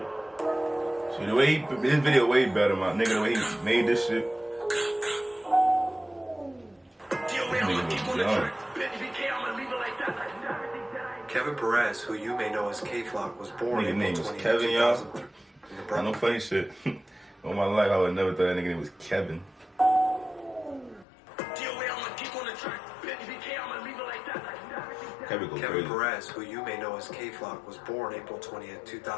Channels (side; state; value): right; drops out; at 21.1 s